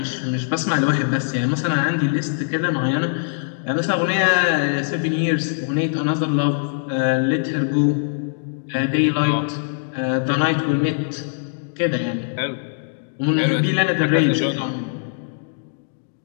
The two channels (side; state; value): right; silent; digital silence